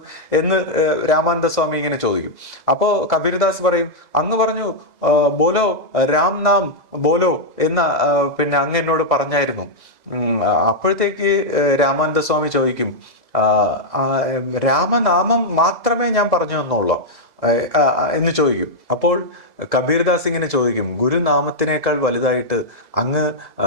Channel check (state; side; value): late; right; 2.0 ms